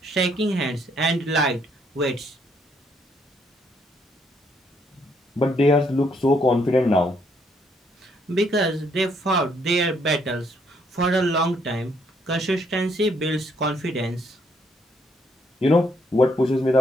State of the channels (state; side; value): normal; both; correlation 0.70